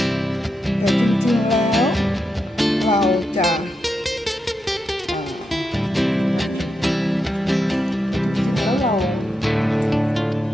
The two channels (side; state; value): both; normal; correlation 0.86